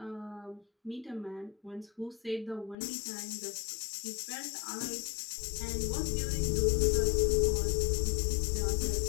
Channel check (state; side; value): drops out; right; at 2.8 s